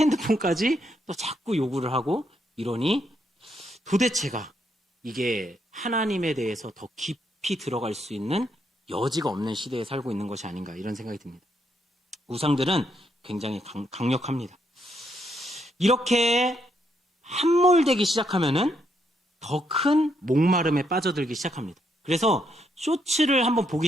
또 자꾸 요구를 하고 이러니 도대체가 이게 하나님에 대해서 더 깊이 들어갈 수 있는 여지가 없는 시대에 살고 있는 것이 아닌가, 이런 생각이 듭니다. 우상들은 굉장히 강력합니다. 이렇게 함몰되기 시작하면은 더 큰 목마름에 빠져들기 시작합니다. 그래서 쇼츠를 한번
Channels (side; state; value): both; normal; correlation 0.76